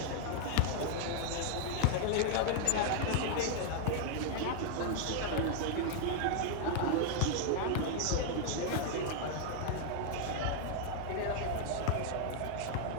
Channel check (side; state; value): both; different; correlation 0.00